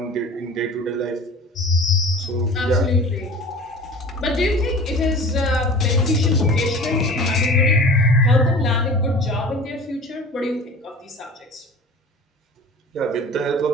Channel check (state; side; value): normal; both; correlation 0.40